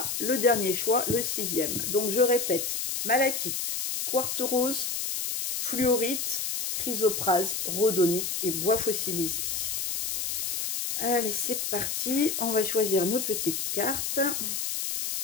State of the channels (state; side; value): noise; left; hiss, 2 dB below the sound